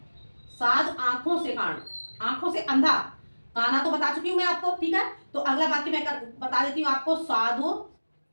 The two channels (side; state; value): both; inverted; correlation -1.00